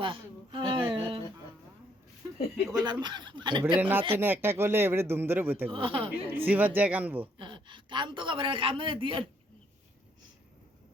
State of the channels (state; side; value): normal; both; correlation 0.69